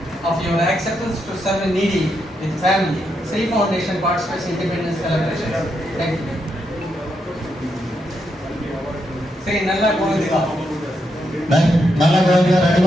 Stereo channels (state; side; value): normal; both; correlation 0.81